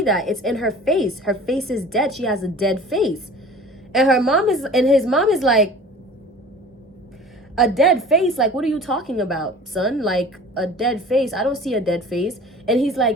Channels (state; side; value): normal; both; correlation 0.43